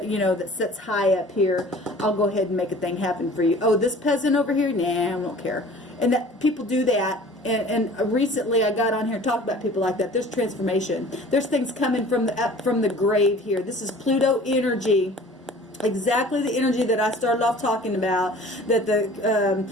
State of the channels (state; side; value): normal; both; correlation 0.46